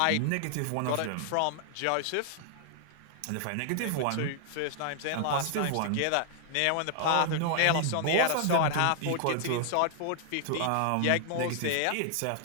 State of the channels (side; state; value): both; different; correlation -0.01